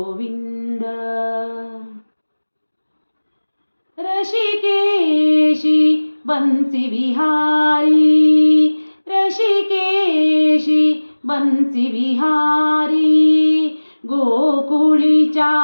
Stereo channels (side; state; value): both; inverted; correlation -1.00